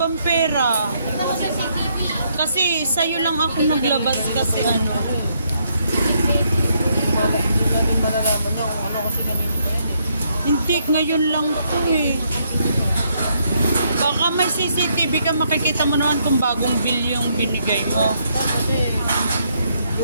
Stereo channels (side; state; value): both; inverted; correlation -0.74